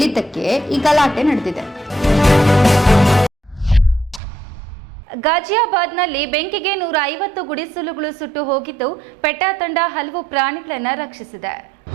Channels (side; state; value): left; drops out; at 4.2 s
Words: ಈ ಗಲಾಟೆ ನಡೆದಿದೆ. ಗಾಜಿಯಾಬಾದ್ನಲ್ಲಿ ಬೆಂಕಿಗೆ 150 ಗುಡಿಸಲುಗಳು ಸುಟ್ಟು ಹೋಗಿದ್ದು, ಪೆಟಾ ತಂಡ ಹಲವು ಪ್ರಾಣಿಗಳನ್ನು ರಕ್ಷಿಸಿದೆ.